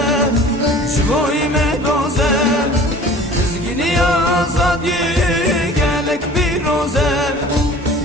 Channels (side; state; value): both; normal; correlation 0.45